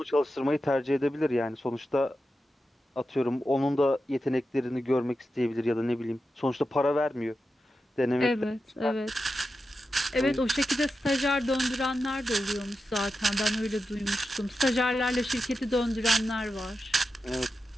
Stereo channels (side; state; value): both; normal; correlation 0.90